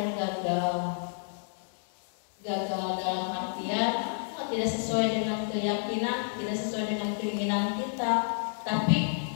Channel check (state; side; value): silent; right; 58 dB below the other